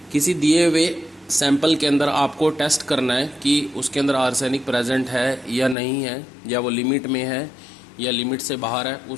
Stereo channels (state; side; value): drops out; right; at 5.8 s